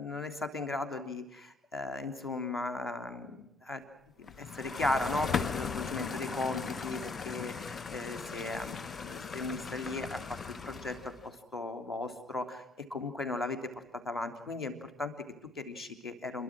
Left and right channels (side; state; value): right; quieter; 3.0 dB